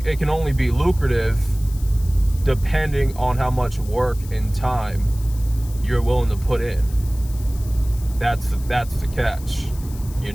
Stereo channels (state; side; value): noise; left; hiss, 19 dB below the sound